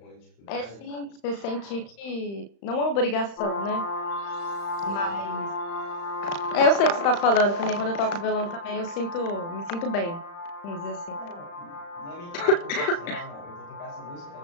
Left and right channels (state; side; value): late; right; 35 ms